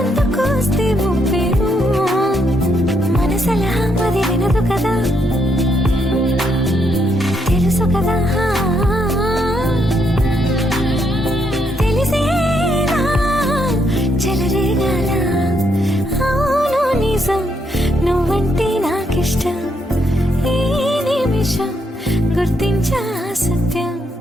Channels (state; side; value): normal; both; correlation 0.76